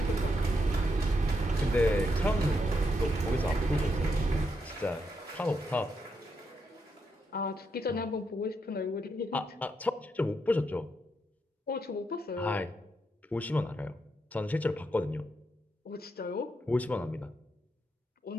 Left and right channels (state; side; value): normal; both; correlation 0.81